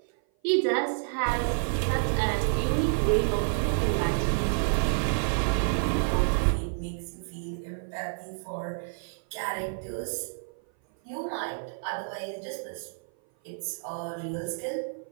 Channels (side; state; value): left; silent; 56 dB below the other